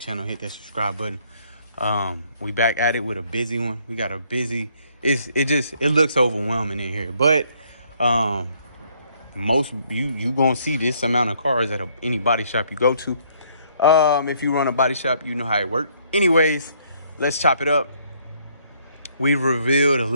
hit that subscribe button. We back at it with a busy one. We got a busy. It looks overwhelming in here, but most you gonna see this amount of cars at any body shop you go to. If you run a body shop, you know how it works. Anyways, let's chop it up. We've revealed a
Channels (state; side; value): inverted; both; correlation -0.66